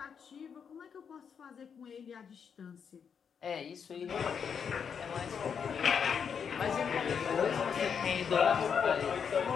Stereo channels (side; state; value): right; quieter; 6.9 dB